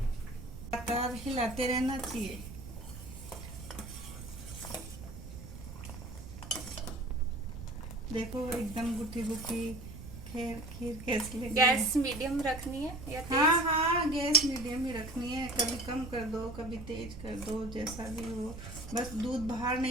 लगातार हिलाते रहना चाहिए। देखो एकदम गुठी गुठी खीर कैसी लगी। गैस मीडियम रखनी है या तेज? हाँ, गैस मीडियम ही रखनी है। कभी कम कर दो, कभी तेज कर दो, जैसा भी हो, बस दूध बाहर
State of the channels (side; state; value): right; noise; rumble, 11 dB below the sound